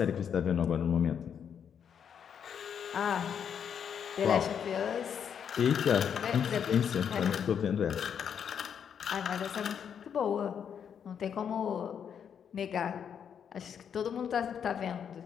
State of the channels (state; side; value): quieter; right; 7.9 dB